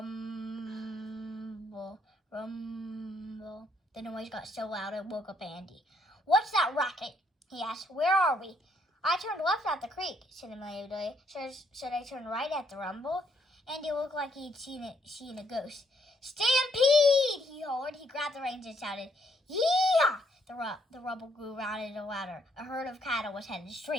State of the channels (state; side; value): normal; both; correlation 0.71